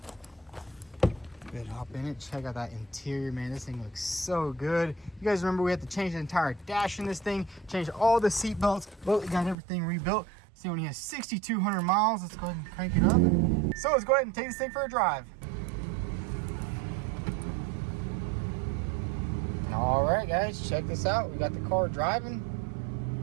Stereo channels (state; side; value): drops out; left; at 9.6 s